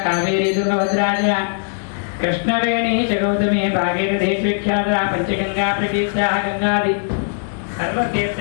कावेरी तुंगभद्राज कृष्णवेणी च गौतमी भागीरथी च विख्याता पंचगंगा प्रकीर्ता गंगादि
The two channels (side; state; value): right; silent; digital silence